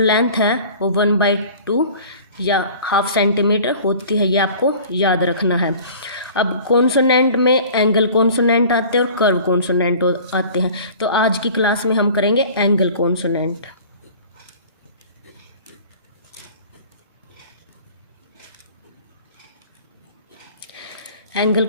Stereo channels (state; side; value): inverted; both; correlation -0.45